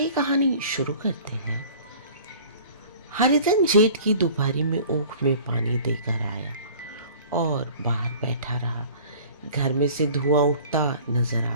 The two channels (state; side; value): inverted; both; correlation -0.46